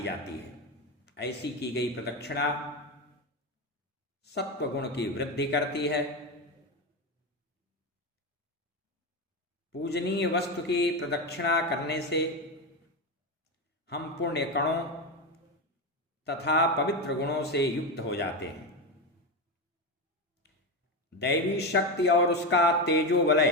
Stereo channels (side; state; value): both; normal; correlation 0.15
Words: जाती है। ऐसी की गई प्रदक्षिणा सत्वगुण की वृद्धि करती है। पूजनीय वस्तु की प्रदक्षिणा करने से हम पुण्य कणों तथा पवित्र गुणों से युक्त हो जाते हैं। दैवी शक्ति और उसका तेजो